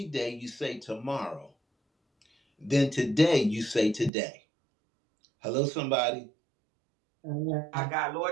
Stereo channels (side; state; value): left; drops out; at 4.1 s